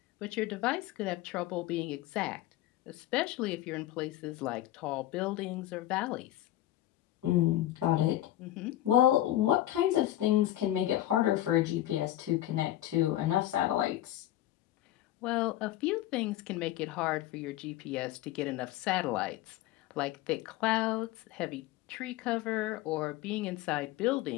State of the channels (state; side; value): quieter; right; 14.1 dB